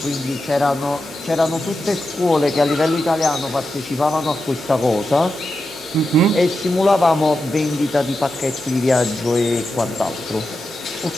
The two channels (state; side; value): noise; left; hum, 30 dB below the sound